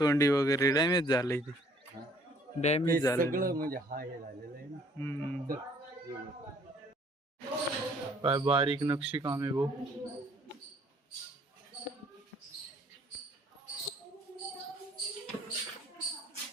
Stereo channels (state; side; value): normal; both; correlation 0.60